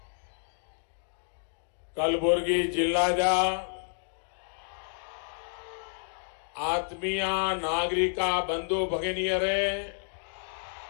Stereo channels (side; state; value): right; silent; digital silence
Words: कलबुर्गी जिल्लाजा आत्मीय नागरिका बंधु भगिनियरे,